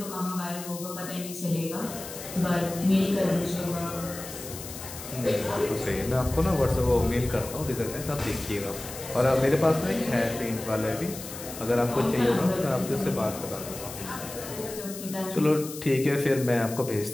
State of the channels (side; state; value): left; noise; hiss, 11 dB below the sound